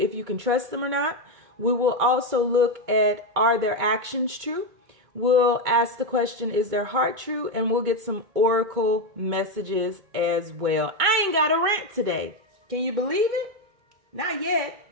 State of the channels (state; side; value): late; left; 2.2 ms